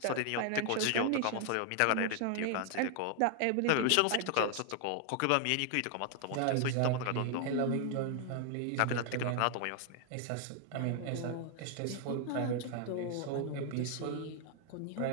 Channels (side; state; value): both; different; correlation 0.00